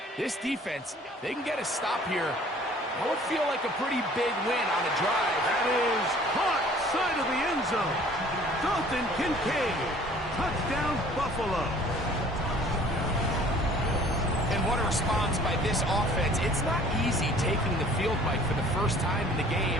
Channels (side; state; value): both; normal; correlation 0.52